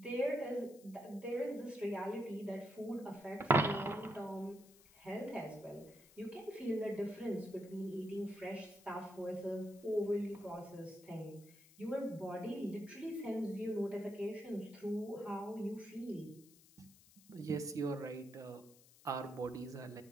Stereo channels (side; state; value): left; noise; hiss, 23 dB below the sound